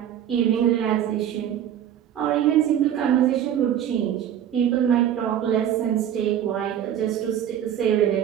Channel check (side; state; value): left; quieter; 10.2 dB